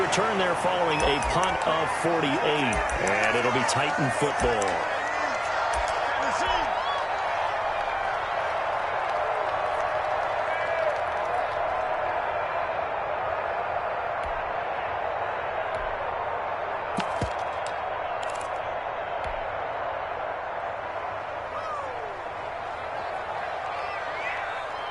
there following a punt of 48. And it'll be Titan football.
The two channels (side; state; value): both; identical; correlation 1.00